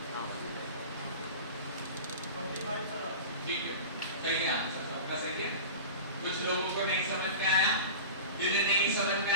ठीक है, सही है, आंसर सबका सही है। कुछ लोगों को नहीं समझ में आया, जिन्हें नहीं समझ में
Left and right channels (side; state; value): both; inverted; correlation -0.33